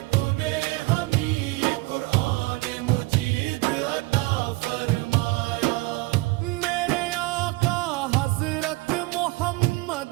تو نے ہمیں قرآن مجید عطا فرمایا، میرے آقا حضرت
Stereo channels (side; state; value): left; quieter; 22.2 dB